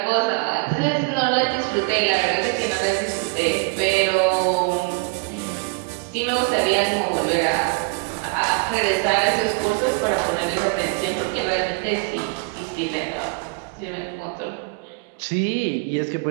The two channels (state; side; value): quieter; left; 30.7 dB